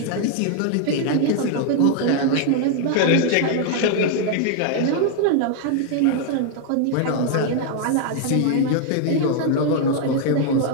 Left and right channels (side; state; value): both; different; correlation 0.00